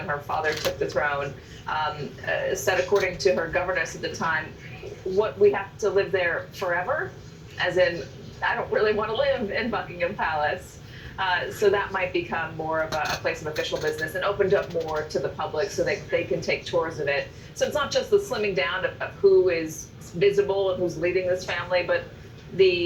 her father took the throne, said, according to her governess at the time, what, we have to live there forever? As in, I don't really want to live in Buckingham Palace. So that might become more of a place of official business and opened up more to the public so they can take tours of it. So it's not just the slimming down of who is visible and who's leading this family, but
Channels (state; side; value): identical; both; correlation 1.00